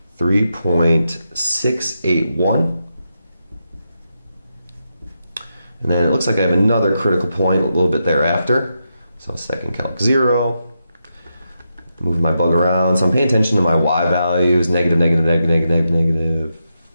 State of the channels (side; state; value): both; inverted; correlation -0.85